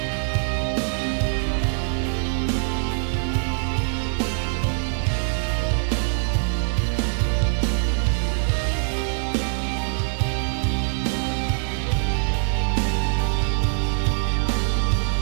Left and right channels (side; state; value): left; silent; 63 dB below the other